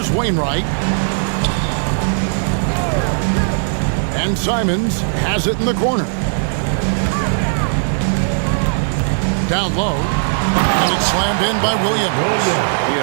Wainwright. And Simons has it in the corner. Down low. And it's slammed in by Williams. You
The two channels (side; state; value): left; silent; 63 dB below the other